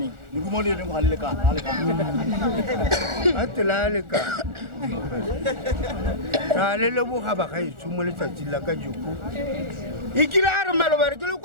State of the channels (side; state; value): left; late; 1.4 ms